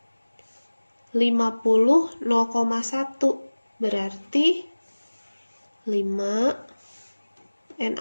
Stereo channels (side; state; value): both; inverted; correlation -1.00